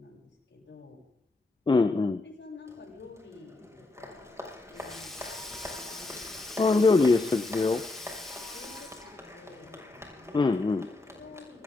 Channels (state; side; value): quieter; right; 3.3 dB